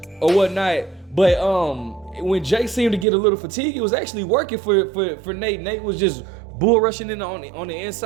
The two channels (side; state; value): left; drops out; at 3.1 s